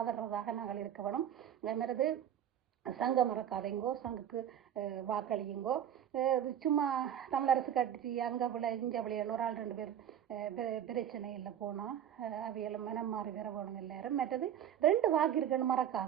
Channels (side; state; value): left; quieter; 9.9 dB